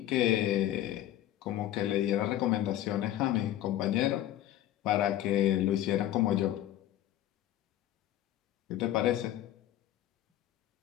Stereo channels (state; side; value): quieter; right; 12.9 dB